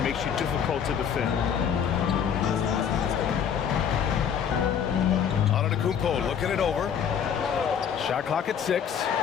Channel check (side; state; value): right; quieter; 7.9 dB